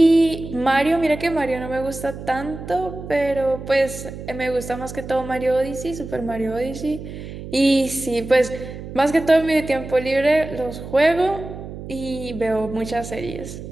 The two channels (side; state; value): right; noise; hum, 11 dB below the sound